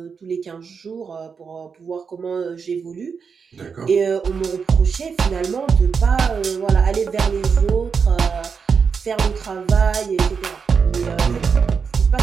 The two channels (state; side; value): quieter; left; 5.9 dB